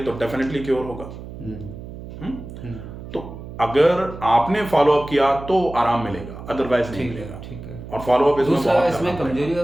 तो डेफिनेटली क्योर होगा। तो अगर आपने फॉलो अप किया तो आराम मिलेगा, अदरवाइज नहीं मिलेगा। ठीक है। और फॉलो अप इसमें कमजोरी का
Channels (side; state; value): right; noise; hum, 12 dB below the sound